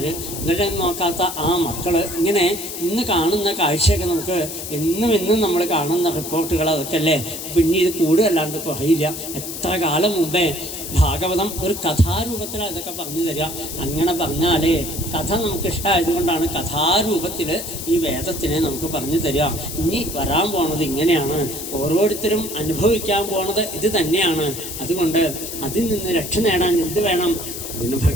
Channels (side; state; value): left; noise; hiss, 8 dB below the sound